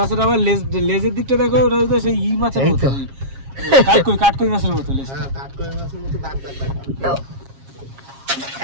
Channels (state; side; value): late; left; 7.4 ms